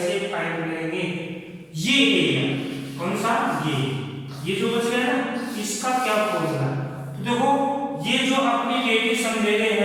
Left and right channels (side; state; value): both; identical; correlation 1.00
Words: फाइंड करेंगे? ये एरिया कौन सा? ये जो बच गया ना, इसका क्या फॉर्मूला? तो देखो ये जो अपने रेडियस हम ले रहे